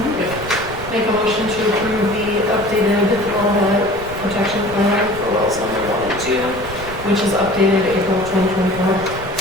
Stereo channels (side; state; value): right; noise; rumble, 13 dB below the sound